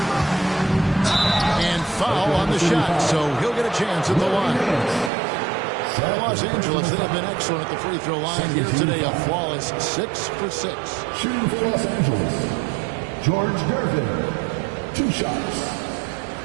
And foul on the shot, so he'll get a chance at the line. Los Angeles, they have been excellent at the free throw line here today. A flawless 6 for 6. Shooting for Los Angeles, George Gervin. 2 shots.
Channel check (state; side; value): drops out; left; at 5.1 s